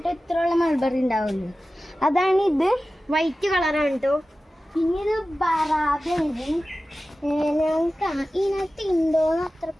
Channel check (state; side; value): normal; both; correlation 0.95